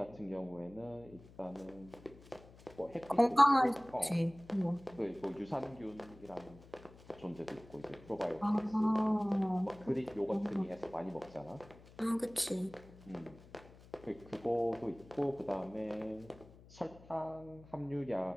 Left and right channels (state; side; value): noise; left; hum, 21 dB below the sound